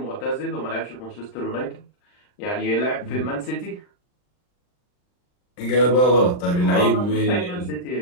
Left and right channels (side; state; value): right; late; 40 ms